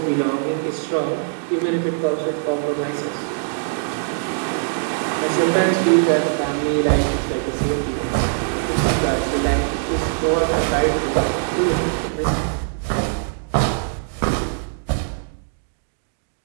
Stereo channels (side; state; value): left; silent; digital silence